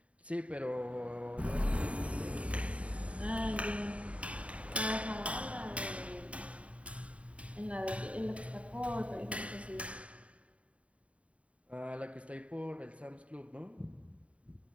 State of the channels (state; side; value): late; left; 0.065 ms